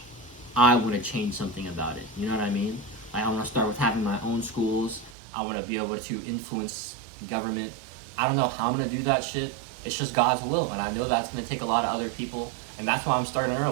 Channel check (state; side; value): drops out; left; at 5.2 s